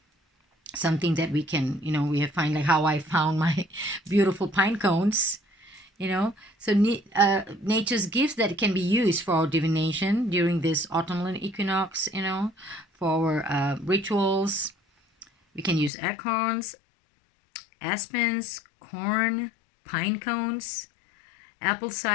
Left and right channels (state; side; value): drops out; right; at 15.9 s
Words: something that we can, we find, like how I found my beautiful pine cones, So nature's gifts that can be used for our divination during this autumnal equinox, for rituals. We can use acorns, aspens, corn, pine cones, apple